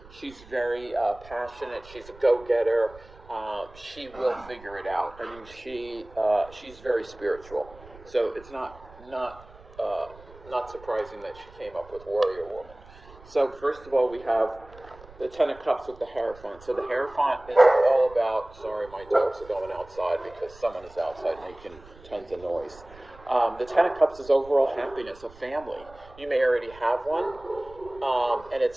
She's very passionate. She's a go-getter. She will figure it out. I mean, she's very spiritual. So it's not surprising that she came up with warrior woman. So first of all, we have the Ten of Cups with the Hierophant. So the Hierophant is all about. Sorry, my dogs are going outside because someone is outside making tons of noise. The Ten of Cups is overall happiness, a family. You may already have one, and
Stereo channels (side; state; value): right; noise; rumble, 21 dB below the sound